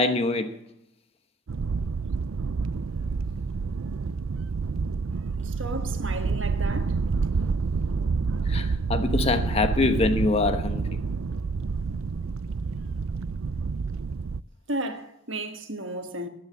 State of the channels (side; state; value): both; normal; correlation 0.62